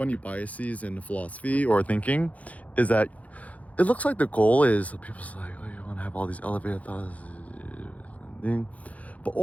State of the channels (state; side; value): late; right; 0.069 ms